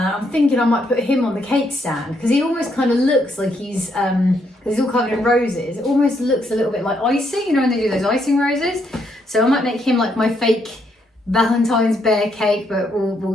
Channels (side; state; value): both; normal; correlation 0.75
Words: thinking I might put him on the cake stand because he almost kind of looks like he's all covered in roses. It almost looks a little bit like icing, you know, when they do those icing roses. So I might make him like my fake Valentine's bear cake, but we'll